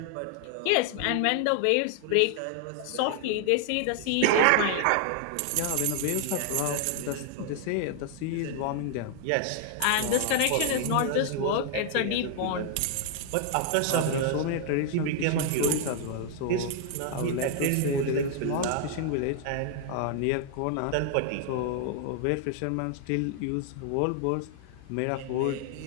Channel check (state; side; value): different; both; correlation 0.00